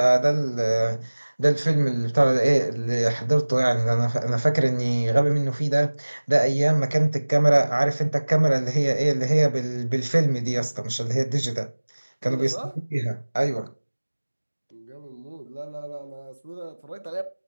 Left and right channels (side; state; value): both; inverted; correlation -1.00